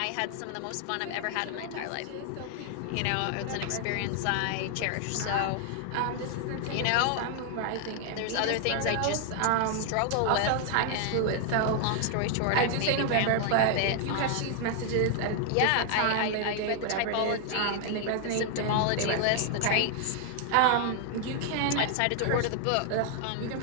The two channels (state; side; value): different; both; correlation 0.00